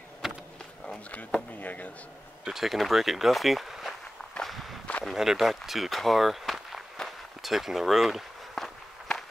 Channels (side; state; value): both; normal; correlation 0.95